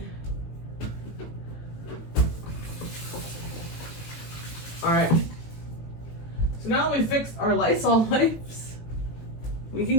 All right. So now that we fixed our Lysol wipes, we can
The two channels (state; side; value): late; right; 18 ms